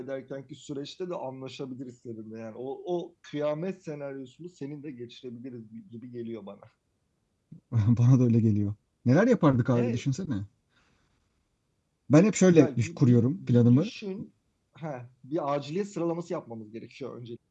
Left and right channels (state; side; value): identical; both; correlation 1.00